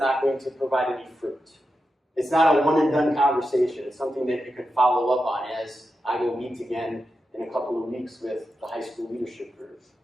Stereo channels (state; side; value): normal; both; correlation 0.89